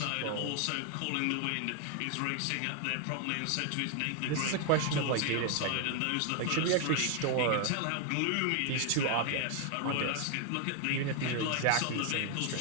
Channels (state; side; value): different; both; correlation 0.00